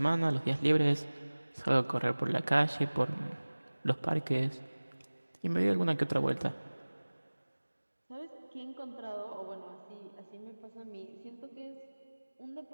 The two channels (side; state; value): both; inverted; correlation -1.00